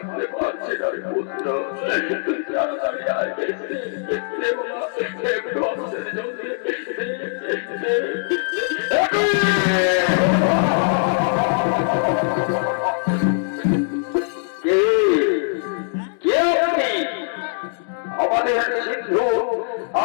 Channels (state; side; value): silent; right; digital silence